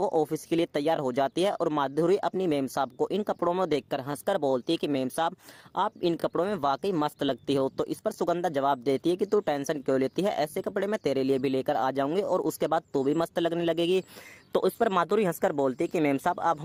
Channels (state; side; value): identical; both; correlation 1.00